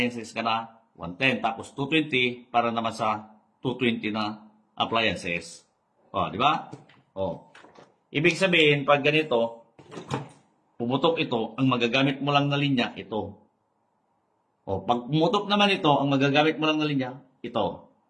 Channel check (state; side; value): identical; both; correlation 1.00